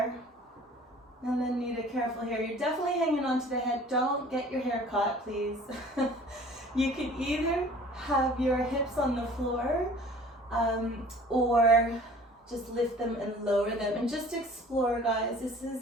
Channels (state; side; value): normal; both; correlation 0.48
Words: and then need a careful here, you're definitely hanging onto the head. Don't get your hair caught, please. You can either have your hips on the floor or just lift them and lower them, and just explore, guys. This